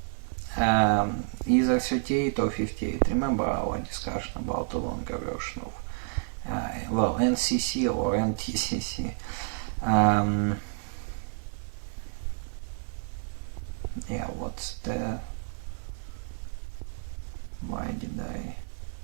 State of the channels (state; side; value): silent; left; digital silence